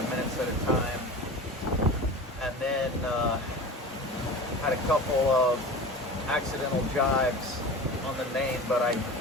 minutes at a time, and then had a couple of accidental jives on the main, but I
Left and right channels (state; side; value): normal; both; correlation 0.33